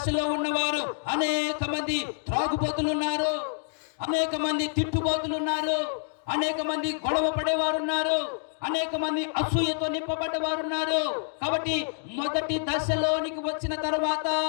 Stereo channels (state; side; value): silent; right; digital silence